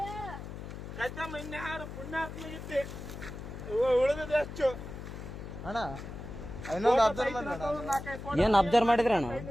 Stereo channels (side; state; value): left; noise; hum, 10 dB below the sound